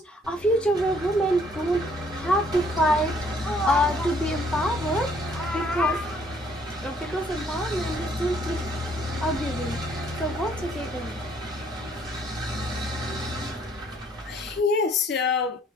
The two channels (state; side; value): normal; both; correlation 0.64